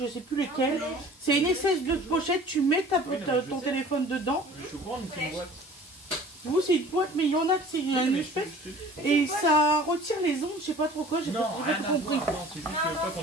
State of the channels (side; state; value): both; normal; correlation 0.46